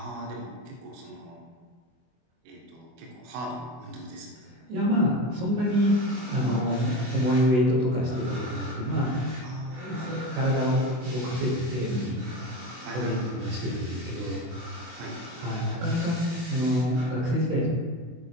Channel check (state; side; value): late; left; 24 ms